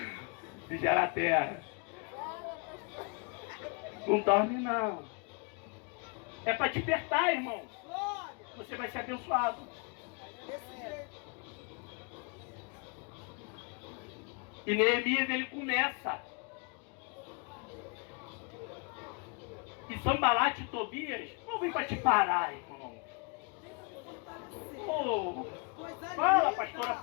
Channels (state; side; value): quieter; right; 33.4 dB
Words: Vigiar a terra. Não dorme não. É para despertar, irmão. Você vai ser abençoado. E Neemias ele começa. E Sambalate e Tobias não vem para te parar, irmão. Oh, fala, pastora,